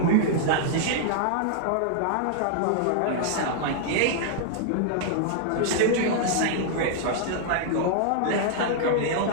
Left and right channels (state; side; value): different; both; correlation -0.01